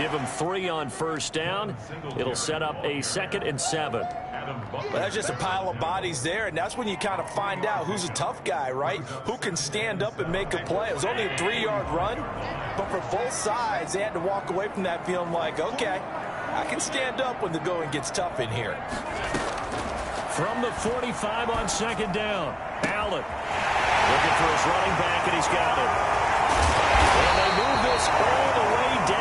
him 3 on first down. It'll set up a 2nd and 7. Well, that's just a pile of bodies there, and that's when you kind of find out who's a tough guy, right? Who can stand up and make a play. It was only a 3-yard run, but for both sides, they had to walk away from that feeling like, okay, I can stand up when the going gets tough in here. From the 45 on 2nd down, Allen looking for his running back, and he's got it. And they move this all the way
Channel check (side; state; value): both; identical; correlation 1.00